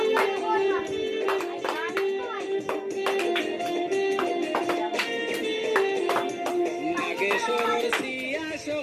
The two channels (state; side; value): identical; both; correlation 1.00